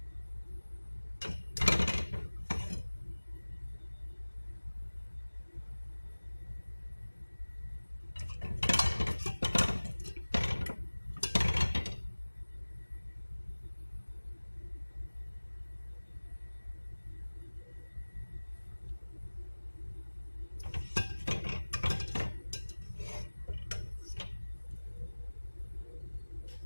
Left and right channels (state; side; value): inverted; both; correlation -1.00